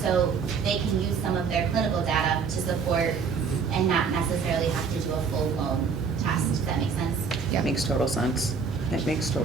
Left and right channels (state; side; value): quieter; left; 5.6 dB